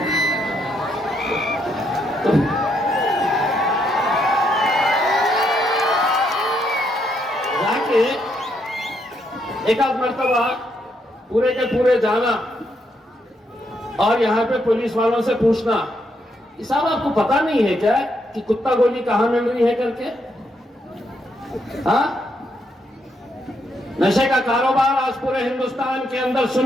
जाके एक आध मर्तबा पूरे के पूरे जाना और यहाँ पे पुलिस वालों से पूछना, साहब आपको पता नहीं है क्या कि कुत्ता गोली कहां मिल रही है करके? हाँ, नशे का कारोबार आज पूरे हिंदुस्तान के अंदर,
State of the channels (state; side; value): normal; both; correlation 0.76